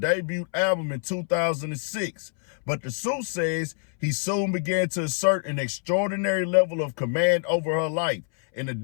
album in 2006. But the suit says he soon began to assert an extraordinary level of command over her life. In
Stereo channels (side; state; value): right; silent; 61 dB below the other